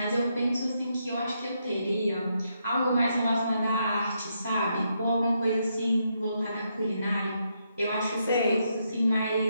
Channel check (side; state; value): both; inverted; correlation -0.79